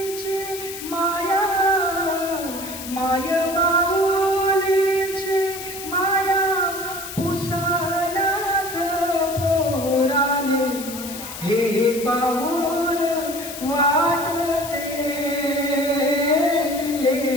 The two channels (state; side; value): noise; left; hiss, 10 dB below the sound